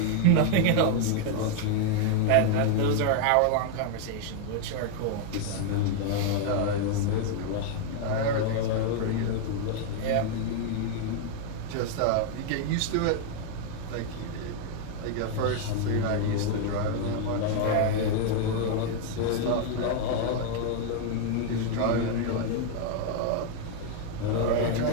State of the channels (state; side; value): different; both; correlation 0.00